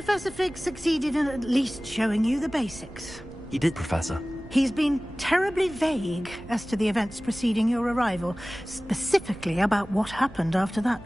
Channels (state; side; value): noise; right; rumble, 19 dB below the sound